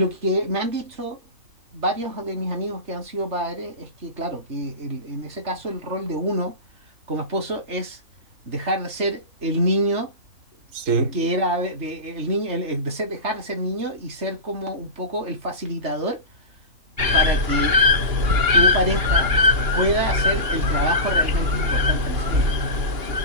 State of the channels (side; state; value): left; late; 3.3 ms